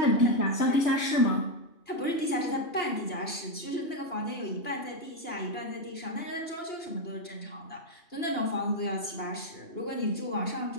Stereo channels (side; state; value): right; late; 2.9 ms